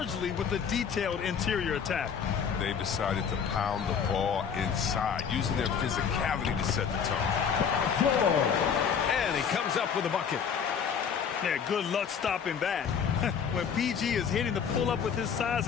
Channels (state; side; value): quieter; right; 7.0 dB